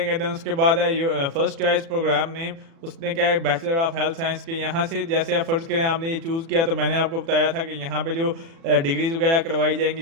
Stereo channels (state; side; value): late; left; 36 ms